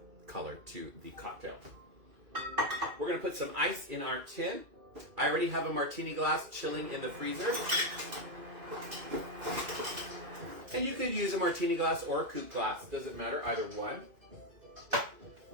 color to the cocktail. We're going to put some ice in our tin. I already have a martini glass chilling in the freezer. And you could use a martini glass or a coupe glass. Doesn't matter, either one.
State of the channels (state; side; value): late; left; 2.5 ms